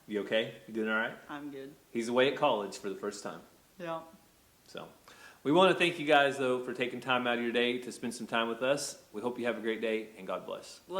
You okay? You doing all right? I'm good. He's away at college for the first time. Yeah. So we want to thank you guys, though, for taking time out of your day to spend some time with us. We hope you have a great day, and God bless.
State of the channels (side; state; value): both; identical; correlation 1.00